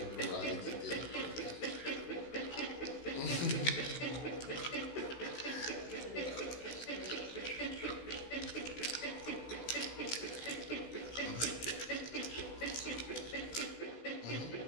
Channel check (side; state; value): right; late; 16 ms